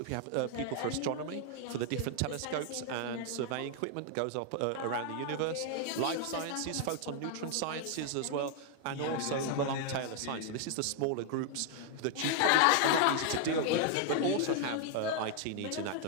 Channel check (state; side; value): different; both; correlation 0.00